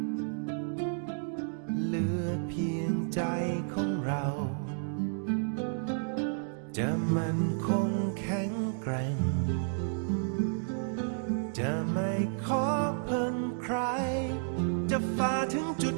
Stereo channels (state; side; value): silent; left; digital silence